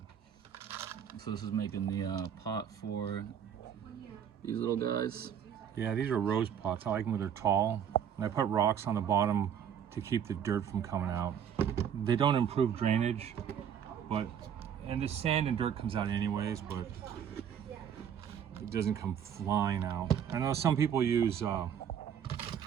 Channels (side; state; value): left; quieter; 8.6 dB